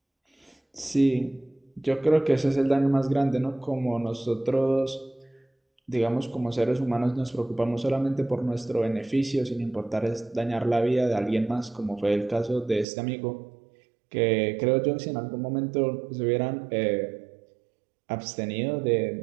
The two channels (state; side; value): drops out; left; at 12.9 s